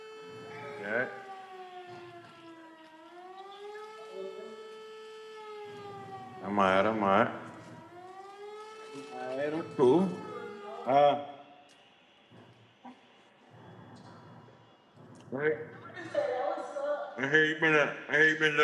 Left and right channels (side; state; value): both; identical; correlation 1.00